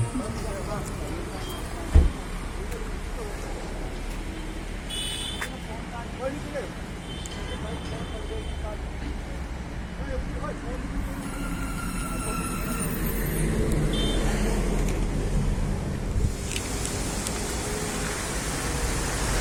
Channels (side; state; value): both; identical; correlation 1.00